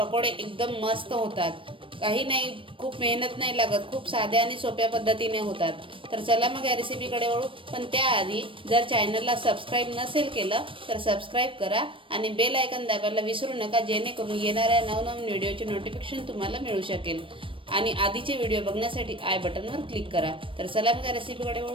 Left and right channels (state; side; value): late; left; 0.25 ms